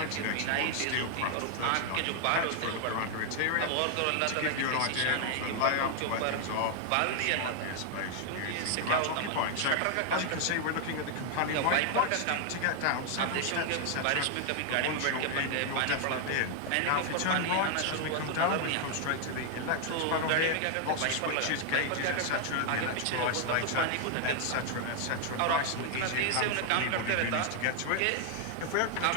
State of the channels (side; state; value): both; different; correlation 0.00